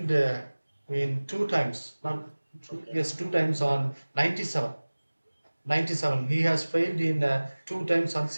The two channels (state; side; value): inverted; both; correlation -1.00